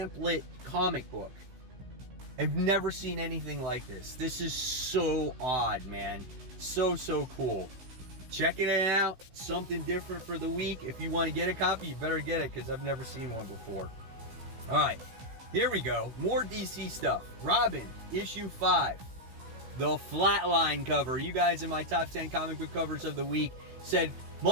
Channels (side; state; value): left; late; 16 ms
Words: comic book. I've never seen anything like this. This is so odd, man. So cool. Checking it out. Something different for the week. If you want to get a copy, you better get it, because I've never seen one before. Alright, here we go. More DC stuff. Robin, issue 5. The Flatline cover. You guys in my top 10 comic book covers of the week said,